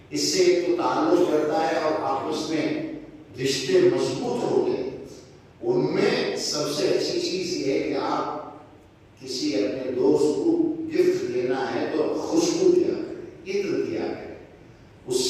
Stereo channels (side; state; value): both; identical; correlation 1.00